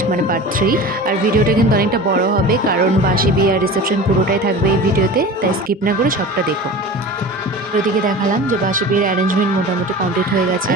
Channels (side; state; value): both; normal; correlation 0.35